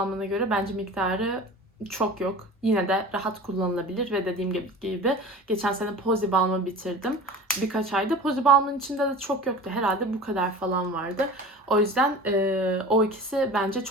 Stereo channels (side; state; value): both; normal; correlation 0.37